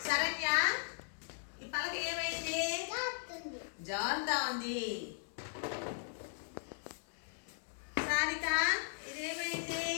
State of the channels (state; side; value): silent; right; 53 dB below the other